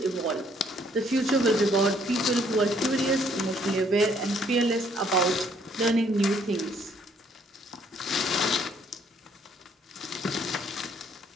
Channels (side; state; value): both; normal; correlation 0.65